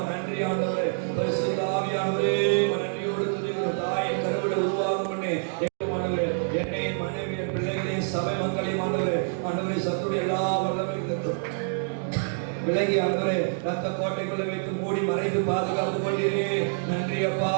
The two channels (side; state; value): left; silent; digital silence